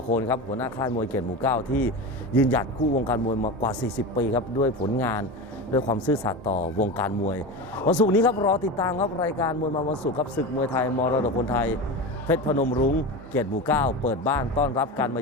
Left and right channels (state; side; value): normal; both; correlation 0.24